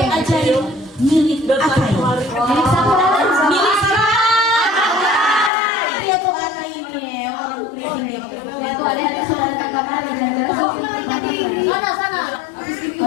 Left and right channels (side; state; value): right; drops out; at 5.5 s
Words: ajaib milik Akai. Milik siapa? Milik siapa? Dia tuh Akai ini orang ini. Itu ada saudara kakak di daerah sana.